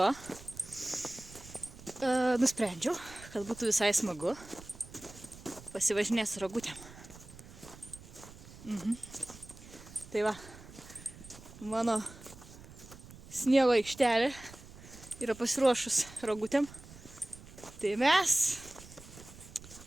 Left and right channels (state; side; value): noise; right; rumble, 18 dB below the sound